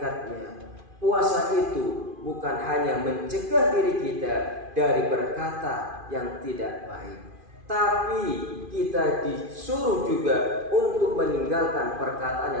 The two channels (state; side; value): late; left; 2.5 ms